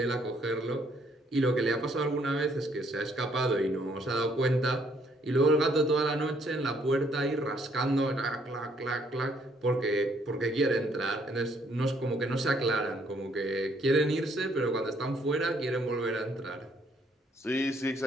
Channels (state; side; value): normal; both; correlation 0.67